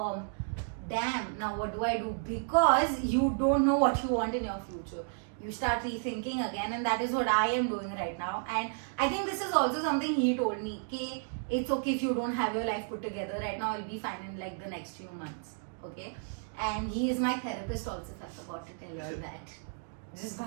damn, now what do I do? Because you don't know what you want in your future. You start rethinking again, and that is what I am doing right now. And I think this is also something he told me, okay, it's okay if you don't have your life put together right now, I'll be fine in like the next few months. Okay. And he is my therapist also, if I forgot to tell you all that. Just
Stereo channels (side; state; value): left; silent; digital silence